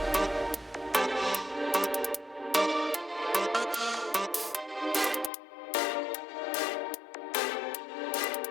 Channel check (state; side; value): drops out; right; at 5.3 s